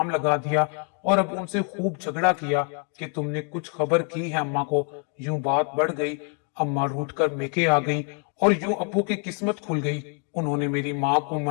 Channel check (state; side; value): quieter; right; 38.9 dB